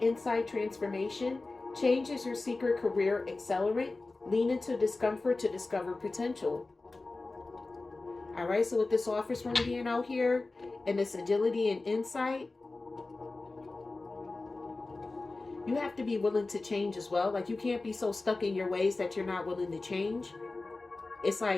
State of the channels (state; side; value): quieter; right; 3.4 dB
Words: transformation. Change is your secret career accelerant. Lean into discomfort to discover potential. All right, so with this office room being out here and this agility and insight, you have to be willing to change as well. Like you can't be so stuck in your ways that you're not willing to change. It's